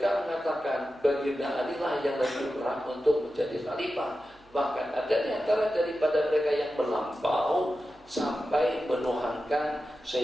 mengatakan baginda Ali lah yang lebih berhak untuk menjadi khalifah. Bahkan ada di antara daripada mereka yang melampau sampai menuhankan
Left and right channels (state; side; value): noise; right; hum, 30 dB below the sound